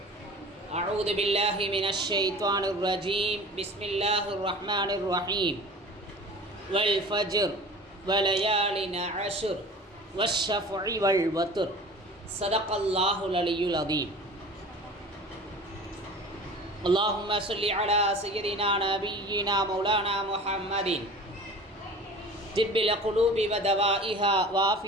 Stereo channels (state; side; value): normal; both; correlation 0.40